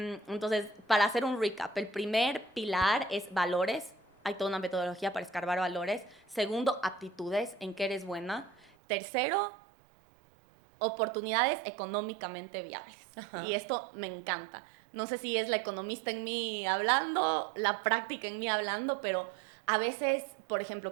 para hacer un recap, el primer pilar es valores. Hay toda una metodología para escarbar valores. Segundo, aptitudes, en qué eres buena. Tercero, oportunidades económicamente viables. Ajá. Y esto me encanta. No sé si es la economista en mí hablando, la práctica en mí hablando, pero a veces, por ejemplo,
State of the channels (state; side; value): drops out; left; at 8.7 s